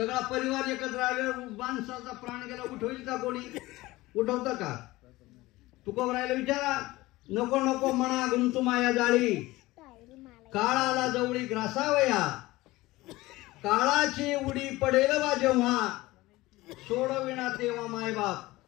परिवार एकत्र आल्यावर माणसाचा प्राण गेला उठवेल का कोणी? उठवतं का? तुकोबरायला विचारा. नको नको म्हणा गुंतू माया जाळी, काळ आला जवळी ग्रासावया, काळाची उडी पडेल बा जेव्हा, सोडविना तेव्हा मायबाप.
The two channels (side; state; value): right; quieter; 19.2 dB